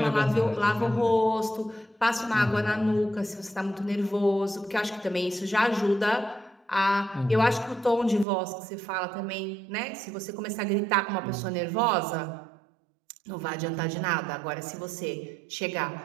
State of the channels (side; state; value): left; drops out; at 8.2 s